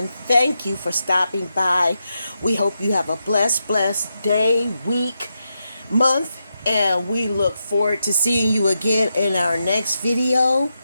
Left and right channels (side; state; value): both; inverted; correlation -0.86